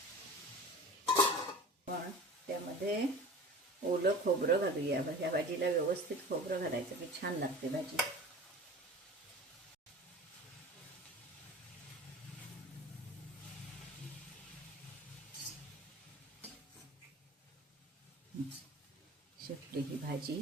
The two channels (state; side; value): normal; both; correlation 0.38